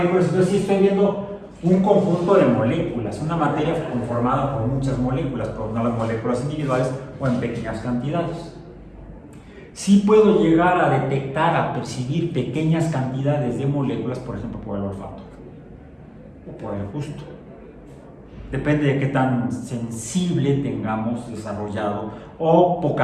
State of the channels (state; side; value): identical; both; correlation 1.00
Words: Entonces sí estoy viendo un conjunto de moléculas, una materia conformada por muchas moléculas, pero no las moléculas individuales o en pequeñas cantidades. Sí puedo llegar a detectar, a percibir pequeñas cantidades de moléculas, por ejemplo, por el olfato o por el gusto. Depende de qué tan sensible tengamos desarrollado o